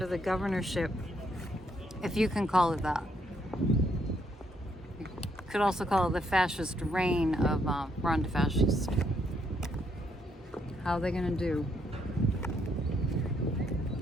the governorship, if you can call it that. You could also call it the fascist reign of Ron DeFascist. How are they going to do?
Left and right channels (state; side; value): normal; both; correlation 0.73